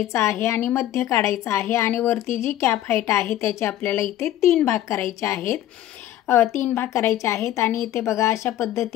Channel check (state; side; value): quieter; right; 13.0 dB